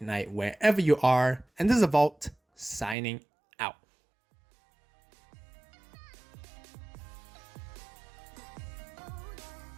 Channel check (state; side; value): drops out; left; at 3.0 s